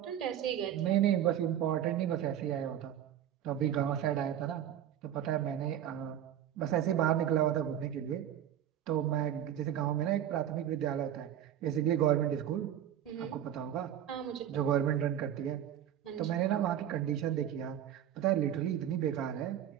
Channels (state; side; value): quieter; left; 10.7 dB